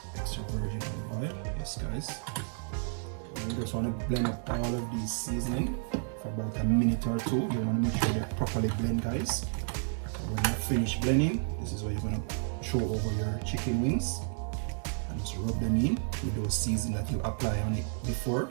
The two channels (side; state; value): left; silent; 57 dB below the other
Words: extra virgin olive oil. Yes, guys. And you just want to blend up all of these seasoning for about a minute or two. You want to make sure they're properly blend, guys. So when you finish blending, this is what you're going to throw over your chicken wings and just rub them in with those seasonings that you apply on it before.